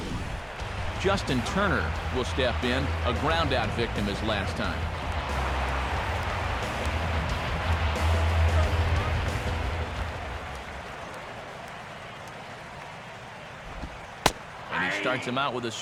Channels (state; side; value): identical; both; correlation 1.00